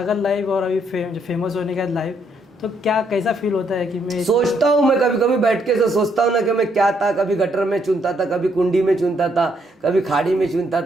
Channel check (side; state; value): both; normal; correlation 0.73